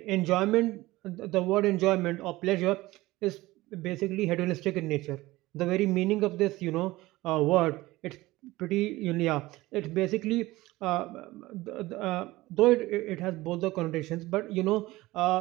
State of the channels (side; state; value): left; quieter; 18.9 dB